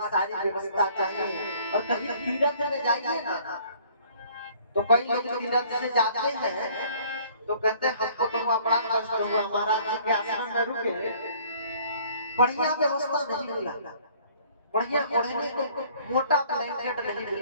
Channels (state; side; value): inverted; both; correlation -0.56